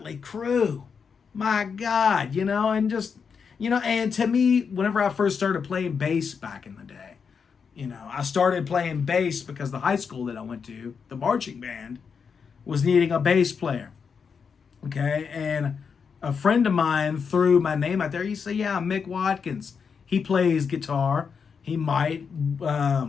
Crue. My God, and just, and to me, whenever I first started playing bass back in the day, I started playing bass because the high school that I went to, the marching band, was needing a bass player. Okay, and a friend of mine threw my name out there. He said, yeah, Mick Watkins. He plays guitar. He might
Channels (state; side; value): quieter; right; 6.1 dB